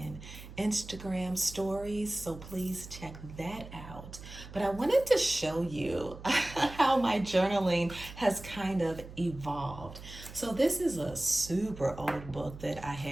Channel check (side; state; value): right; noise; hum, 14 dB below the sound